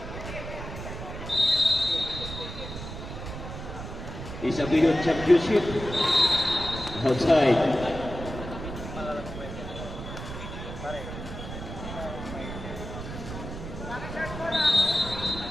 Isabel Championship. Outside.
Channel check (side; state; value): right; noise; rumble, 9 dB below the sound